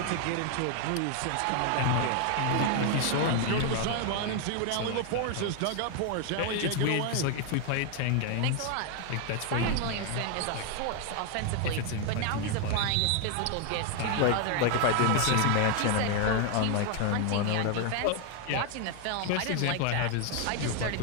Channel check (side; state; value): both; different; correlation 0.01